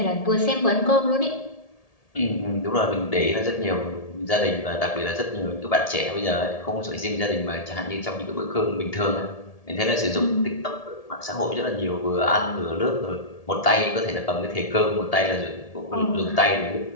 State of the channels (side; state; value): right; late; 1.8 ms